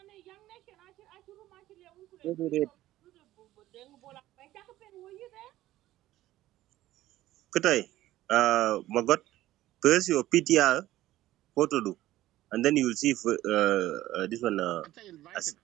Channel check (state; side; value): quieter; left; 15.1 dB